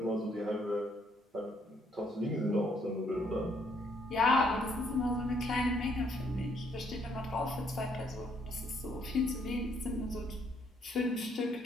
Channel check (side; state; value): both; normal; correlation 0.69